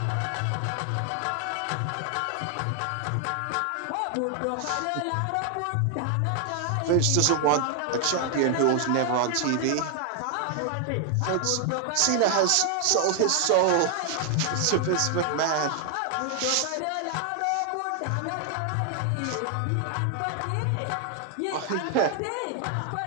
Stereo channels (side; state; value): both; different; correlation 0.00